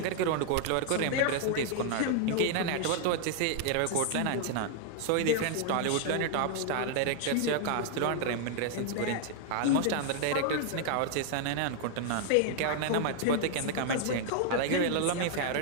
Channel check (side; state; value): both; different; correlation 0.00